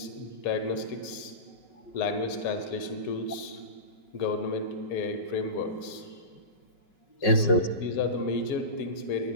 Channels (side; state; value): right; late; 5.7 ms